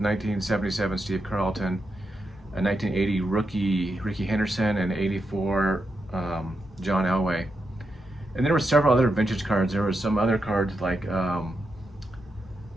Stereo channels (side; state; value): both; normal; correlation 0.85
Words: 1977 Steve Carlton, a 1980 rookie Ricky Henderson, and 84 John Elway. And there were several other vintage cards. There were some other cards like